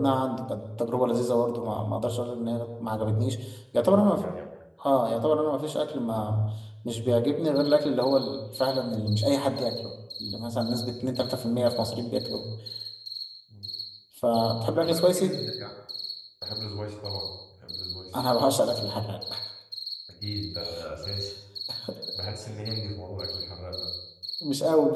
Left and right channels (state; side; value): identical; both; correlation 1.00